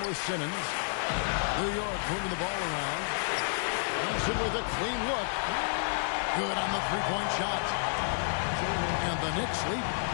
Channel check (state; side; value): silent; right; 57 dB below the other